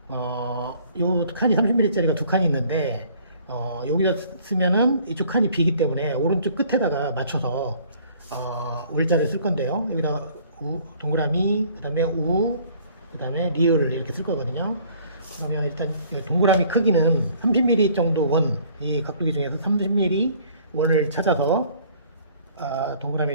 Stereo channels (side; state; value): both; inverted; correlation -0.56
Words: 요 칸이 30mm짜리가 두 칸이 있는데 여기다 쓰면은 이쪽 칸이 비기 때문에 오른쪽 끝에다가 맞춰서 울자를 쓸 건데요. 여기다 동그라미, 그 다음에 그 다음에 리을을 이렇게 쓸 거거든요. 그러면 일단 동그라미 크기는 30mm 정도 원, 이 각도기 중에서 30mm 원을 찾아서